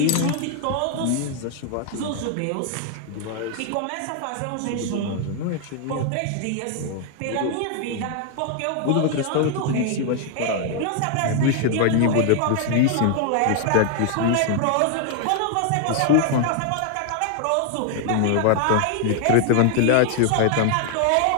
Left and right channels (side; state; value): both; different; correlation 0.00